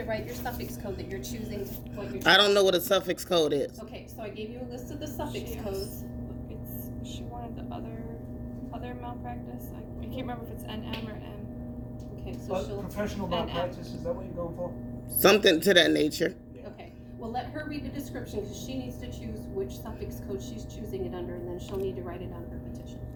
write your suffix code that you're choosing, what you're choosing. I don't know what a suffix code is. Okay, so I gave you a list of the suffix codes. She wanted the other malpractice. I can't remember if it's NM or M. Okay, so she'll, Professional malpractice, is that what you're going for? Something to that nature. okay. Well, let her read the description because she needs to choose which suffix code she's choosing it under, and then she'll need to write it on her petition.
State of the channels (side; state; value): both; identical; correlation 1.00